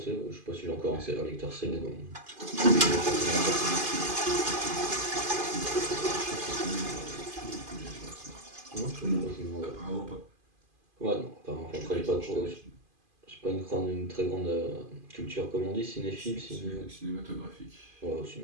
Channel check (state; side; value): late; left; 2.5 ms